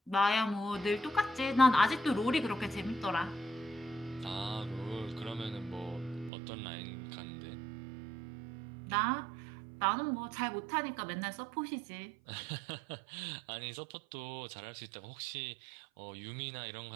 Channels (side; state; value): left; drops out; at 6.3 s